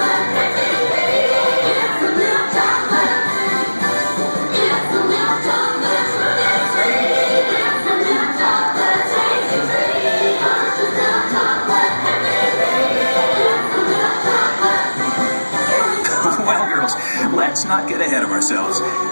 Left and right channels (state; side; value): inverted; both; correlation -1.00